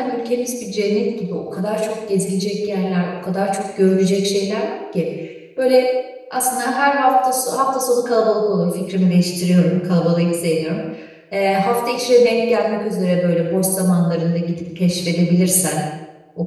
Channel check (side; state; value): both; identical; correlation 1.00